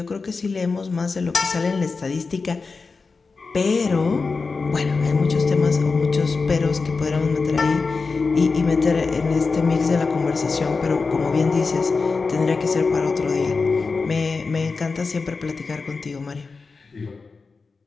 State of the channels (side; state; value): right; quieter; 4.4 dB